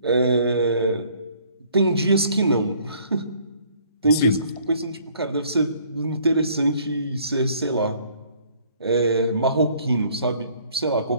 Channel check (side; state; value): both; inverted; correlation -0.59